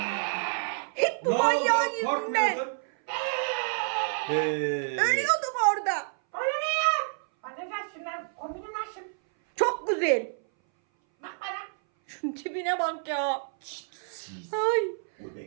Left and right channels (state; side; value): silent; left; 58 dB below the other